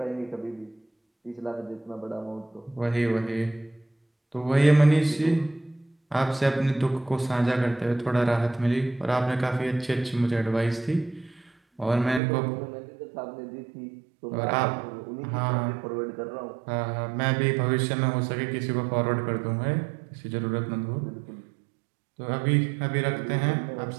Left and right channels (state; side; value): drops out; left; at 12.2 s